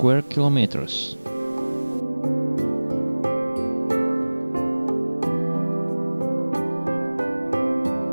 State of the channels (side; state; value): both; inverted; correlation -1.00